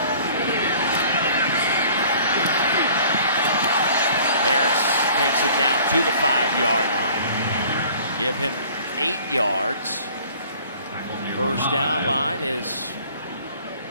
Harris takes it down to the 5-yard line. Give him 8 yards. 1st down line is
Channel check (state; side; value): inverted; both; correlation -0.51